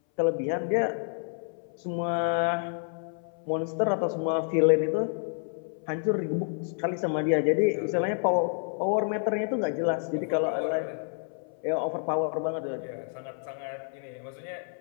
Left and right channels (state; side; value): silent; right; 59 dB below the other